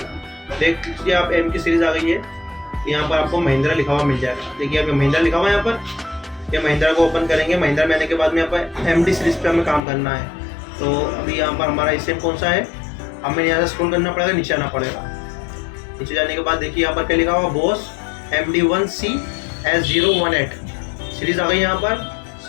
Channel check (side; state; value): right; drops out; at 9.8 s